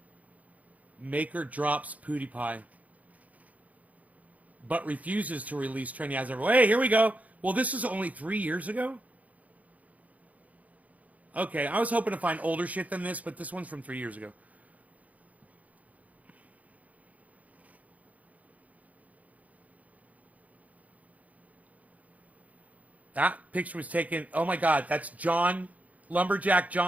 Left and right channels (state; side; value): late; left; 0.072 ms